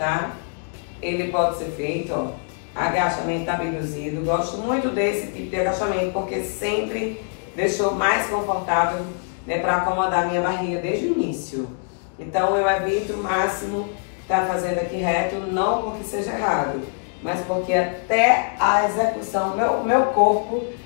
Ele pode ser feito, ó, agachamento abduzido. Gosto muito desse tipo de agachamento, porque sempre deixou mais confortável, né, para acomodar a minha barriga desde o início. Então, eu evito o máximo estar fazendo aqui reto, não porque seja errado, mas porque até a execução, meu corpo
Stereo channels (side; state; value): right; silent; 57 dB below the other